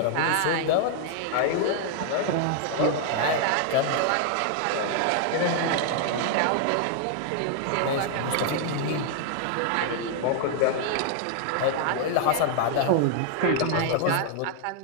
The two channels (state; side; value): different; both; correlation 0.00